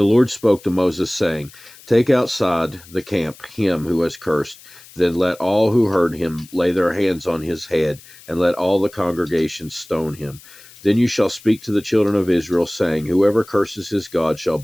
Lord spoke to Moses, saying, Take outside the camp him who has cursed. Then let all who heard him lay their hands on his head, and let all the congregation stone him. Then you shall speak to the children of Israel, saying, Whoever curses his God shall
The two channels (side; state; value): left; noise; hiss, 22 dB below the sound